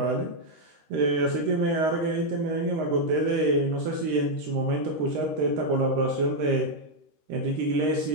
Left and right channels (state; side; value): late; left; 13 ms